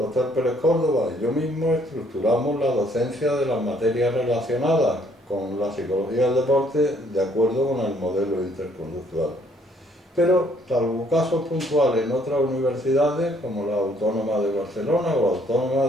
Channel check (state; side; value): normal; both; correlation 0.65